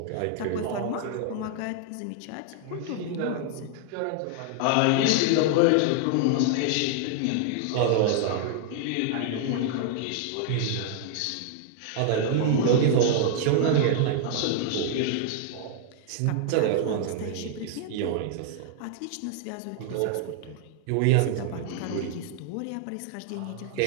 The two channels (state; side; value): different; both; correlation 0.00